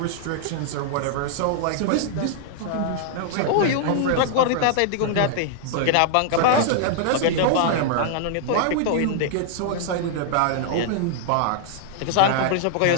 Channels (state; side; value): different; both; correlation -0.01